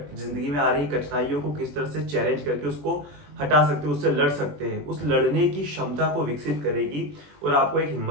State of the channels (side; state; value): left; late; 20 ms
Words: में आ रही कठिनाइयों को किस तरह से चैलेंज करके उसको हटा सकते हैं, उससे लड़ सकते हैं। उस लड़ने की क्षमता को विकसित करेगी और आपको एक